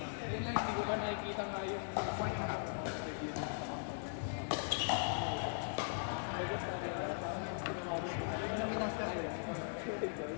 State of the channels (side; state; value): right; silent; digital silence